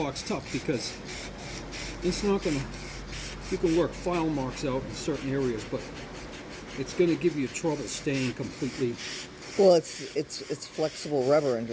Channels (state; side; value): identical; both; correlation 1.00